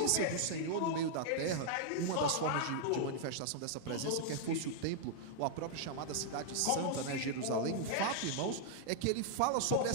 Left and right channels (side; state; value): both; different; correlation -0.01